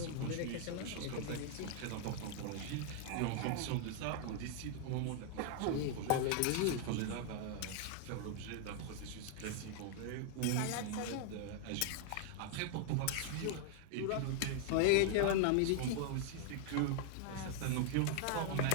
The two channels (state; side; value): different; both; correlation 0.00